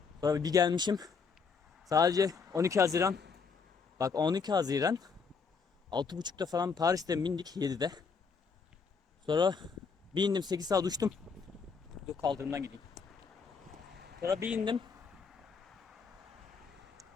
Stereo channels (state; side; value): quieter; right; 5.4 dB